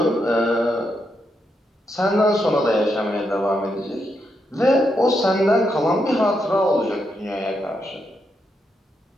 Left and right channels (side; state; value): both; normal; correlation 0.82